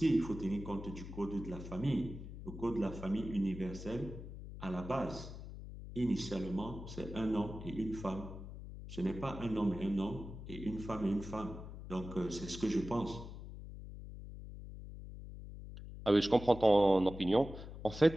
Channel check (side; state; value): left; noise; hum, 11 dB below the sound